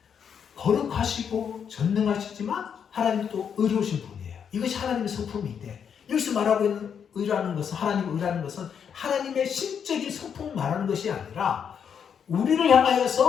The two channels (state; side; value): quieter; right; 7.5 dB